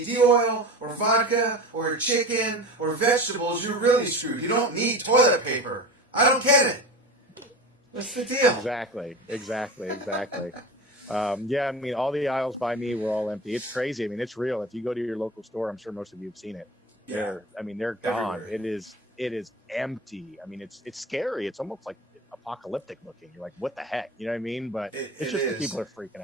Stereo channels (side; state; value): both; normal; correlation 0.31